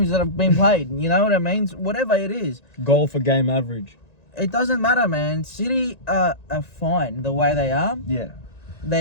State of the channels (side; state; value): right; late; 1.9 ms